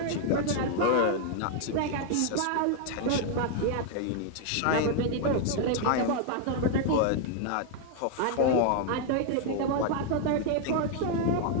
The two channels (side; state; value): both; different; correlation 0.00